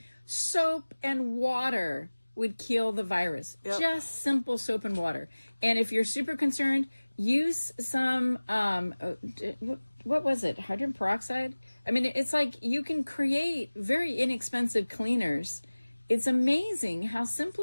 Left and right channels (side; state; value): both; inverted; correlation -1.00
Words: Soap and water would kill the virus. Yep. Just simple soap and water. And if you're super concerned, use some, what was it? Hydrogen peroxide? I mean, it's like you can create very inexpensive cleaners. It's amazing how